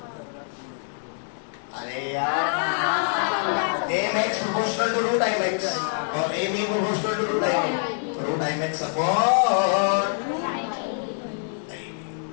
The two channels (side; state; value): right; silent; 62 dB below the other